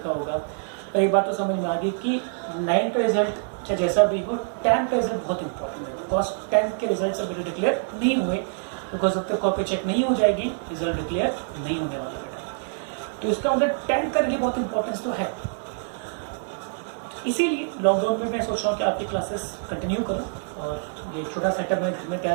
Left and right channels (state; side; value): silent; left; 60 dB below the other